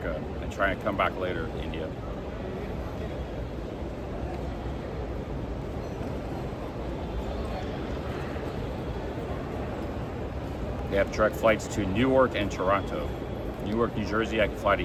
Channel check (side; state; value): both; identical; correlation 1.00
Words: and trying to come back later to India. They have direct flights to Newark and Toronto. Newark, New Jersey, I can fly to